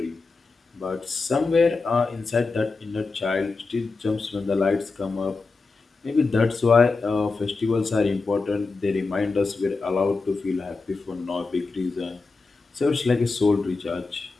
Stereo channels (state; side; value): quieter; right; 4.0 dB